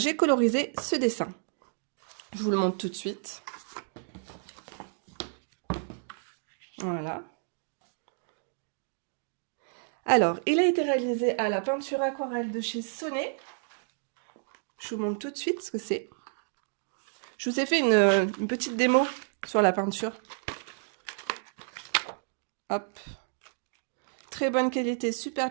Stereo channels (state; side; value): silent; left; digital silence